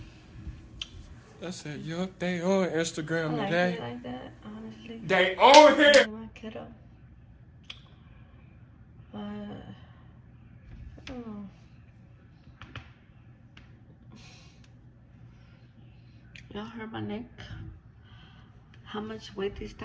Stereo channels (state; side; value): identical; both; correlation 1.00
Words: I said, yup, they on Instagram I like today. it like that, honestly. They on here. My kiddo. But, oh. Y'all heard my neck? How much weight these